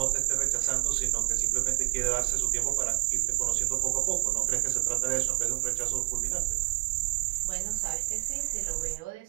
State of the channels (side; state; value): left; quieter; 24.1 dB